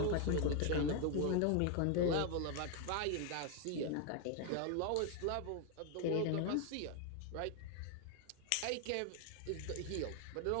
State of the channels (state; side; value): different; both; correlation 0.01